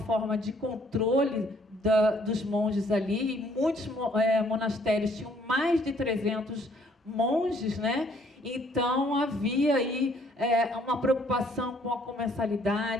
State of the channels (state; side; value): normal; both; correlation 0.63